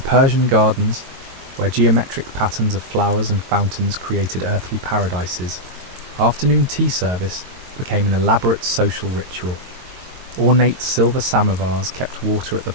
gardens, where geometric patterns of flowers and fountains created earthly paradises, afternoon tea service became an elaborate social ritual. Ornate silver samovars kept water at the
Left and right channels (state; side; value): late; left; 22 ms